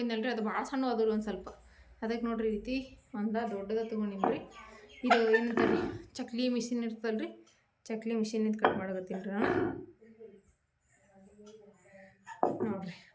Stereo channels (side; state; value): both; identical; correlation 1.00